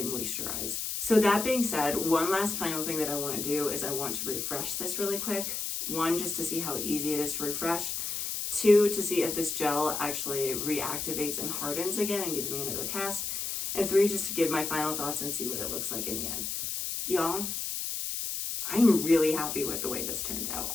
moisturized. So that being said, one last final thing that I want to do is I want to refresh this really quick. 1, just to see how easy it is to refresh. 2, to see if this gel actually reactivates and hardens again and gives me another cast. And 3, just to give my final thoughts and see what it looks like in the end. Y'all, I'm really happy with the way this turned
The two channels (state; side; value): noise; left; hiss, 3 dB below the sound